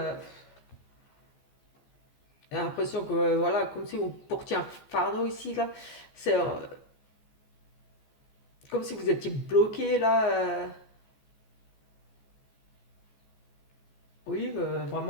j'ai l'impression que voilà, comme si vous portiez un fardeau ici là, c'est comme si vous étiez bloqué là. Oui,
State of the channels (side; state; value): right; late; 14 ms